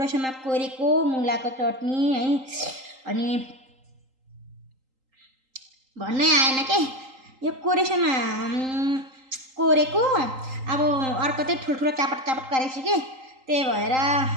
कोरेको मुलाको चटनी है। अनि भन्नै आएन के यो कोरेसम्म कोरेको। अब अर्को चाहिँ ठुल्ठुलो चापट गरेको कि त्यही भएर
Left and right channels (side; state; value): left; late; 3.8 ms